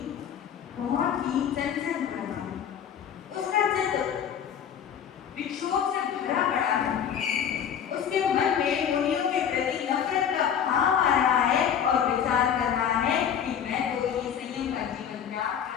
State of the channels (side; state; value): right; quieter; 8.5 dB